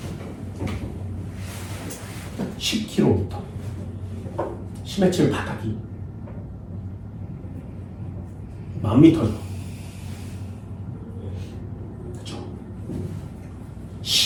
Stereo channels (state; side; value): identical; both; correlation 1.00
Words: 10km. 심해층 바닥이 10,000m죠. 그렇죠.